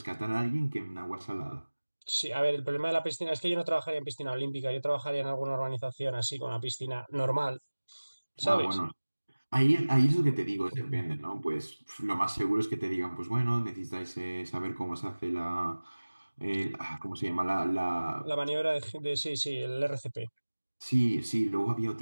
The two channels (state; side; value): inverted; both; correlation -1.00